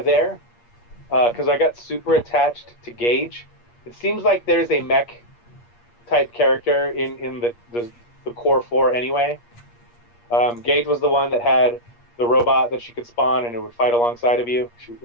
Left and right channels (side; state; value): right; late; 8.5 ms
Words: there, because I got super attached to Gage. It seems like there's a mech type character in the core 4 anyway. Gage was the one that had the robot that she could spawn and it would fight alongside of you.